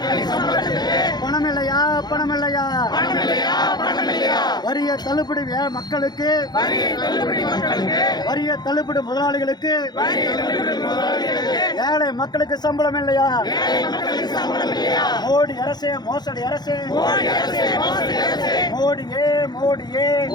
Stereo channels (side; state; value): right; late; 0.20 ms